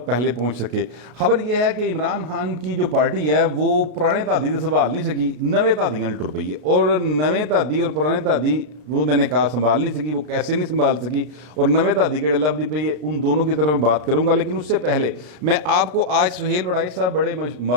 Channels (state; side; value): late; left; 33 ms